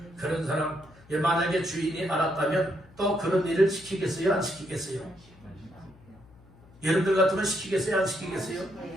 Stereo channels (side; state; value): left; noise; hum, 25 dB below the sound